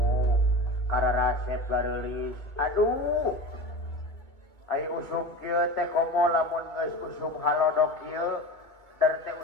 kararasep gareulis. Aduh. Ai usum kieu teh komo lamun geus usum halodok kieu, dar teh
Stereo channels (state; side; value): late; right; 2.3 ms